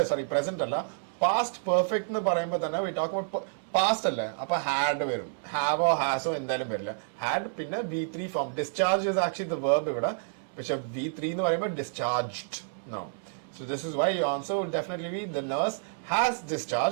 Present alla. Past perfect എന്ന് പറയുമ്പോൾ തന്നെ we talk about past അല്ലേ, അപ്പൊ ഹാഡ് വരും. ഹാവോ ഹാസോ എന്തായാലും വരില്ല. ഹാഡ് പിന്നെ V3 form. Discharge is actually the verb ഇവിടെ, പക്ഷെ V3 എന്ന് പറയുമ്പോൾ discharged. No, so this is why your answer will definitely be the nurse has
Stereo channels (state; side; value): silent; left; 58 dB below the other